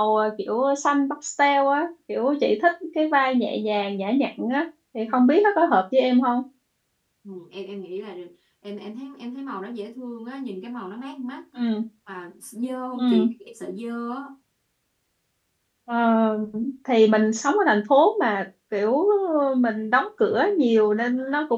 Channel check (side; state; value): both; identical; correlation 1.00